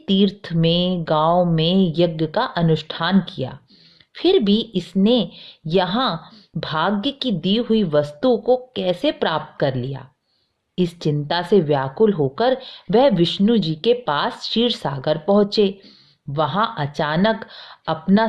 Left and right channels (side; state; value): both; identical; correlation 1.00